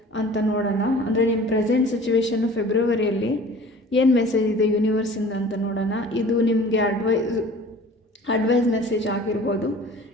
ಅಂತ ನೋಡೋಣ. ಅಂದರೆ ನಿಮ್ಮ ಪ್ರೆಸೆಂಟ್ ಸಿಚುವೇಶನ್ನು ಫೆಬ್ರವರಿಯಲ್ಲಿ ಏನು ಮೆಸೇಜ್ ಇದೆ ಯೂನಿವರ್ಸಿಂದ ಅಂತ ನೋಡೋಣ. ಇದು ನಿಮಗೆ ಅಡ್ವೈಸ್ ಮೆಸೇಜ್ ಆಗಿರ್ಬೋದು.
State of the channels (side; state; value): both; normal; correlation 0.45